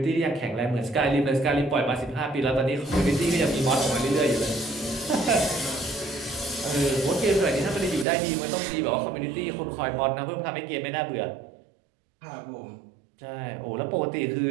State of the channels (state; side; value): drops out; left; at 8.1 s